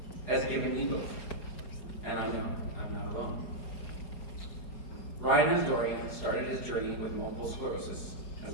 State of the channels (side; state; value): right; late; 4.7 ms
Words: has given me both, and I know I'm not alone. Ryan Asdourian started his journey with multiple sclerosis